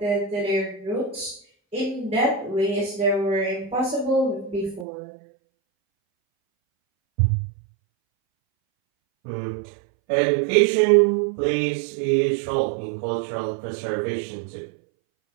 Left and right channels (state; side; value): drops out; left; at 4.9 s